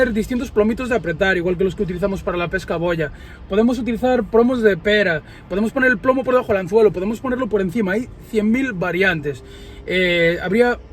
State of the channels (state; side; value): identical; both; correlation 1.00